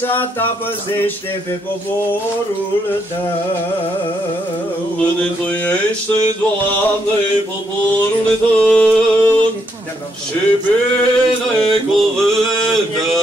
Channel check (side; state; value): both; normal; correlation 0.76